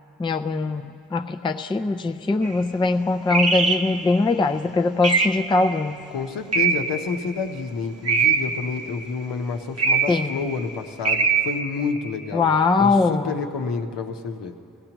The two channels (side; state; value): both; normal; correlation 0.49